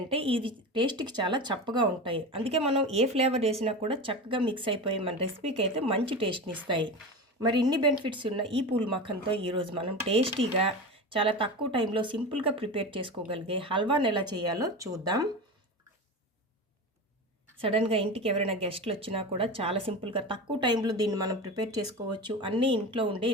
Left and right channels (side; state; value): both; normal; correlation 0.26